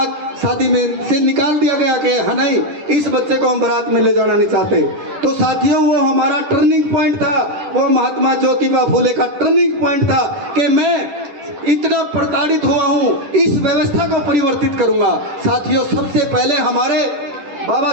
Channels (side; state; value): left; late; 10 ms